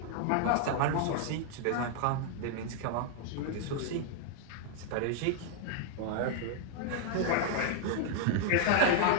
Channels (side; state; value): both; different; correlation 0.00